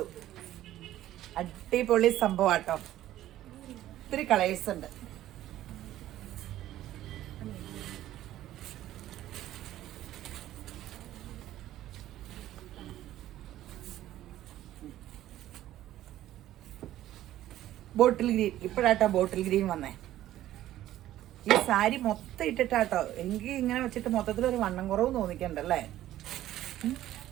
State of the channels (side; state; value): left; quieter; 13.6 dB